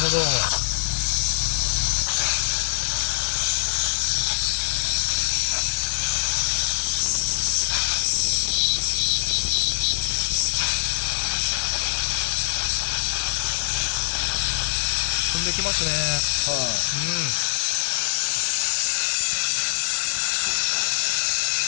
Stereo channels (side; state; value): right; silent; digital silence